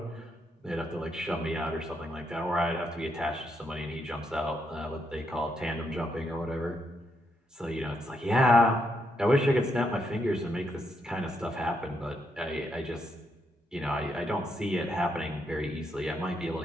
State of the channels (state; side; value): normal; both; correlation 0.78